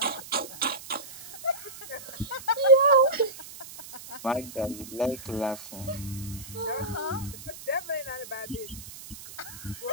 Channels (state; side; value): noise; right; hiss, 14 dB below the sound